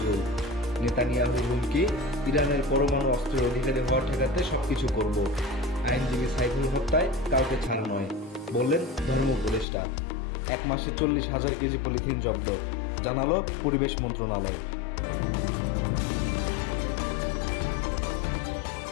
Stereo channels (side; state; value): right; drops out; at 9.7 s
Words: নেতানিয়াহুর হুমকি, ইরানের পরমাণু অস্ত্রের অধিকারী হওয়া ঠেকাতে সবকিছু করব। আইনজীবী সাইফুল হত্যায় কাউকে ছাড় নয়, বললেন ধর্ম উপদেষ্টা। 1 মাসে 40,000 কেজি পলিথিন জব্দ, জানালো পরিবেশ মন্ত্রণালয়।